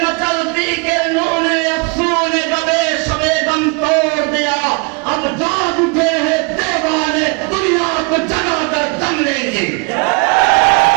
मचलती के नूने अफसूने कबे सबे दम तोड़ दिया, अब जाग उठे हैं दीवाने, दुनिया को जगाकर दम लेंगे।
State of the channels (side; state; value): left; quieter; 30.7 dB